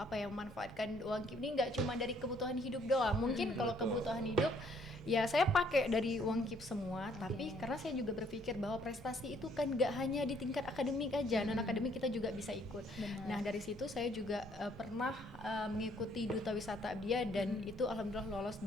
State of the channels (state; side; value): normal; both; correlation 0.65